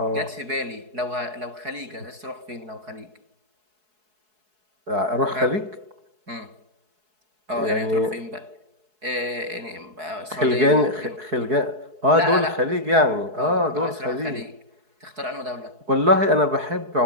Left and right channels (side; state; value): left; late; 4.7 ms